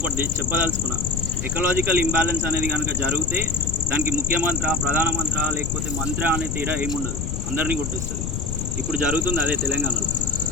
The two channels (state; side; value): noise; left; rumble, 3 dB below the sound